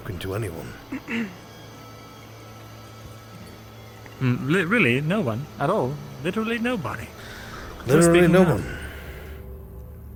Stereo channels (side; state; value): both; identical; correlation 1.00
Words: to anyone. Really? No one? At all? Literally nobody? Literally speaking no now. one.